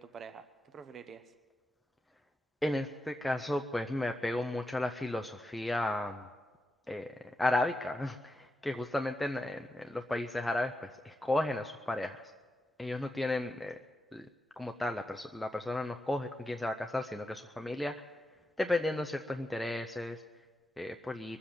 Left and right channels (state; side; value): normal; both; correlation 0.88